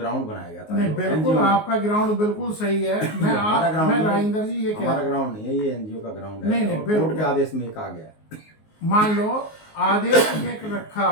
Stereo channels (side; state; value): right; late; 19 ms